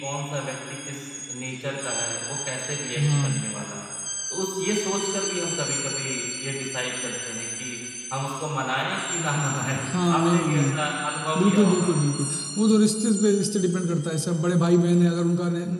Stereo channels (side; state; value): both; identical; correlation 1.00